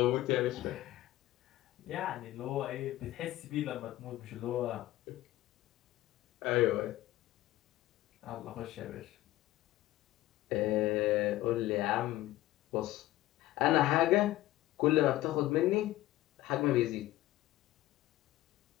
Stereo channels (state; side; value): quieter; right; 15.9 dB